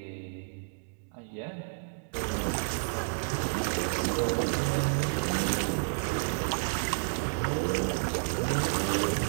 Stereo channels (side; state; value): left; silent; digital silence